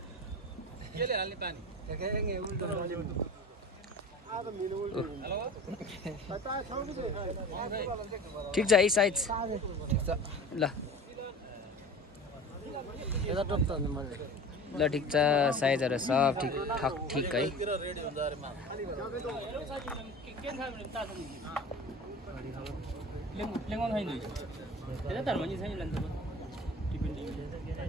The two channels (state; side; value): normal; both; correlation 0.37